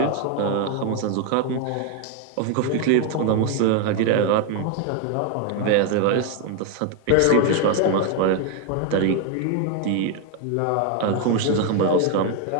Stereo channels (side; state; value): both; different; correlation 0.01